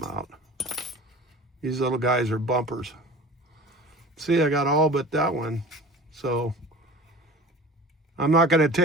out. These little guys are bumpers. See, I got all but that one. So I'm not going to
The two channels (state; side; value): normal; both; correlation 0.39